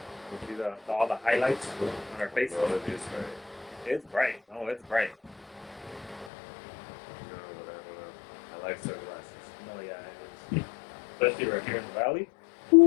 See all the highlights on our face. Well, it is right. It's bright. Oh, it's bright. No, I don't know. I like sunglasses. No, yeah, it is. Especially right here in the valley.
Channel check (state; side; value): drops out; right; at 6.3 s